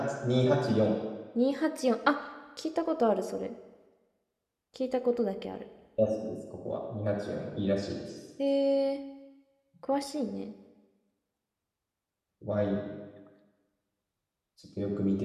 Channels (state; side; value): identical; both; correlation 1.00